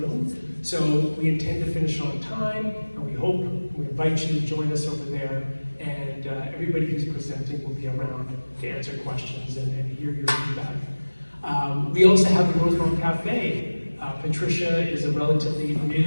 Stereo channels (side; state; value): both; inverted; correlation -1.00